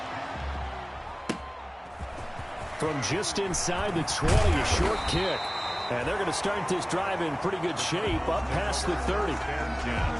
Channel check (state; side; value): identical; both; correlation 1.00